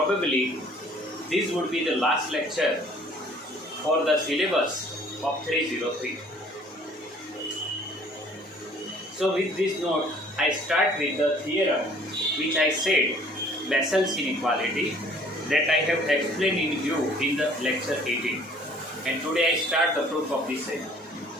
this would be the last lecture for the syllabus of 303. So with this note, I start with the theorem which I said, Bessel's inequality, that I have explained in you in the lecture 18. And today I start the proof of this same.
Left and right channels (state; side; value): normal; both; correlation 0.55